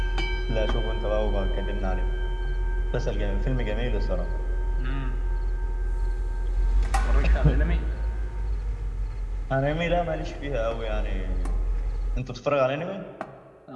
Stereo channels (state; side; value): identical; both; correlation 1.00